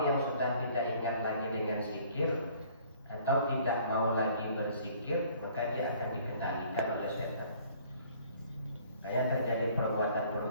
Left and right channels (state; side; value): inverted; both; correlation -0.56